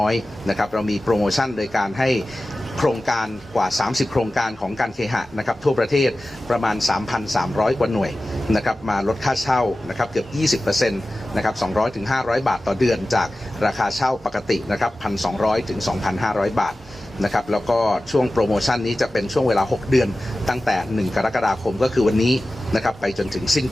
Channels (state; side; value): normal; both; correlation 0.96